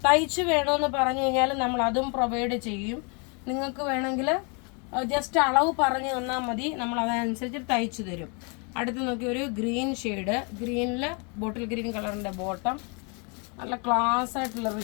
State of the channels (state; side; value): quieter; right; 34.3 dB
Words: തയ്ച്ച് വേണമെന്ന് പറഞ്ഞു കഴിഞ്ഞാൽ നമ്മൾ അതും പ്രൊവൈഡ് ചെയ്യും. നിങ്ങൾക്ക് വേണമെങ്കിൽ ജസ്റ്റ് അളവ് പറഞ്ഞു തന്നാൽ മതി, നമ്മൾ അതനുസരിച്ച് തയ്ച്ചു തരും. അടുത്ത് നോക്കി ഒരു ഗ്രീൻ ഷെയ്ഡ്, ഗ്രീനിൽ ബോട്ടിൽ ഗ്രീൻ കളറിൻ്റെ ബോട്ടം, നല്ല ക്ലാസ് ആയിട്ടുള്ള